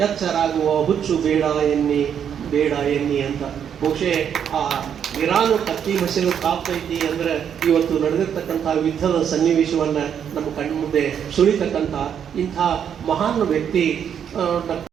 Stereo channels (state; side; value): quieter; left; 8.4 dB